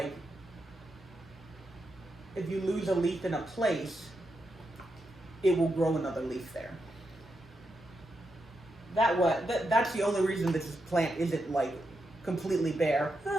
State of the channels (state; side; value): normal; both; correlation 0.85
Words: if you lose a leaf in a place, it will grow another leaf there. That's the only reason this plant isn't like completely bare.